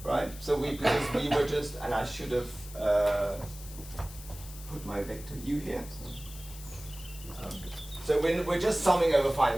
right? So because we were just, and I should have put my vector u here. So we're just summing over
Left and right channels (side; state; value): left; noise; hiss, 16 dB below the sound